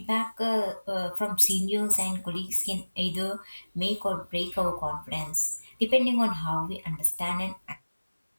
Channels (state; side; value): inverted; both; correlation -1.00